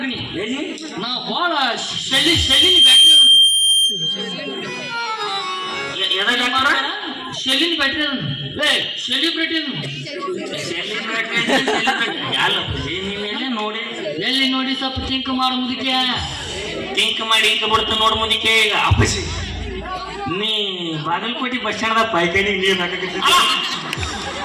ನೀ. ಎಲ್ಲಿ? ನಾ ಬಾಳ ಶೆಲ್ಲಿನ ಬ್ಯಾಟ್ರಿ ಎದಾಗ ಮಾಡ ಶೆಲ್ಲಿನ ಬ್ಯಾಟ್ರಿ ಸೆಲಿಬ್ರಿಟಿ ಅಲ್ಲಪ್ಪಾಜಿ ನೀನ್ ಎಲ್ಲೇ ನೋಡಿ. ಎಲ್ಲಿ ನೋಡಿ ಸ್ವಲ್ಪ ಥಿಂಕ್ ಮಾಡು ಮುದಕ್ಕೆ. ಟಿಂಕ್ ಮಾಡಿ ಇಂಕ ಬಿಡ್ತ ನೋಡ್ ಮುದಿಕೆ. ಈಗ ಅಪ್ಪಾಜಿ ನೀ ಬಾಗಲಕೋಟೆ ಬಸ್ ಸ್ಟ್ಯಾಂಡ್ ಪಾಯ್ಕಾನಿಗೆ ನೀರ್ ಹಾಕಕತ್ತಿದ್ದ.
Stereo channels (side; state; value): both; identical; correlation 1.00